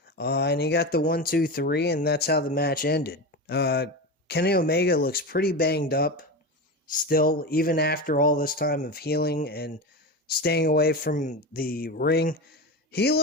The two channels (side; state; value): both; normal; correlation 0.21